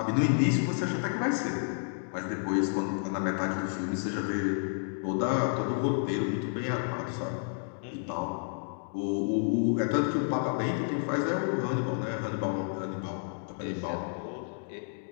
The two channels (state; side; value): silent; right; digital silence